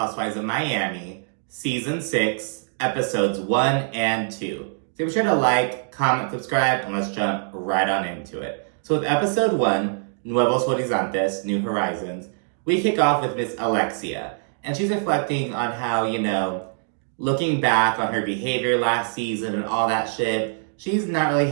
of Miami, Season 6, Episodes 1 and 2. So be sure to like, comment, subscribe, and let's jump right on into it. So with Episode 1, Nuevos Horizontes, New Horizons, we kick off with Miss Alexia. And she's reflecting on how, looking back on her behavior last season and all that shit, she's not really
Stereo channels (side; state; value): left; silent; digital silence